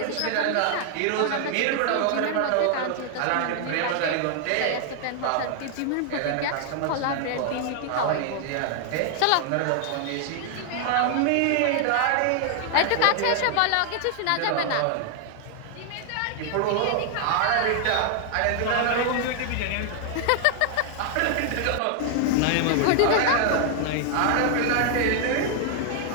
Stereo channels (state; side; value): different; both; correlation 0.00